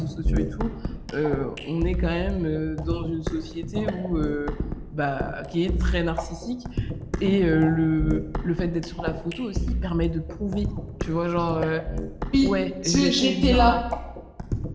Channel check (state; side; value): identical; both; correlation 1.00